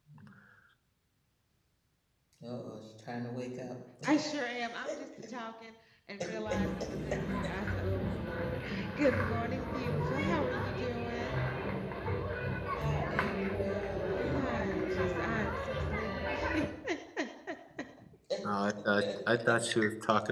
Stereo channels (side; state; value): both; identical; correlation 1.00